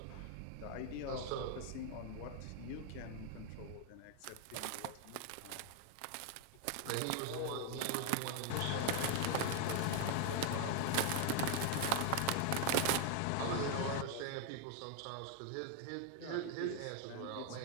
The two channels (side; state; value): both; different; correlation 0.01